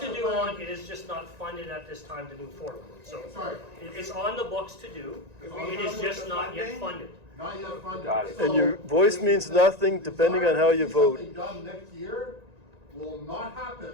master do plan. on, it is just not funded at this time to move forward. So Sorry. it's on the books to do, If we it come is with just the not yet funding, funded. Not yet funded. Got it. So And your voice means nothing depending on how you vote. Something done next year will not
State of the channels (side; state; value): left; late; 1.9 ms